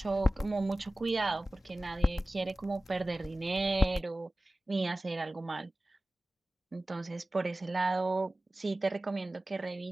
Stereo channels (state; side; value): normal; both; correlation 0.97